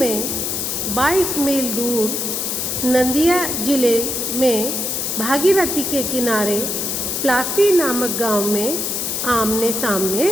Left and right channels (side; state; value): left; noise; hiss, 1 dB below the sound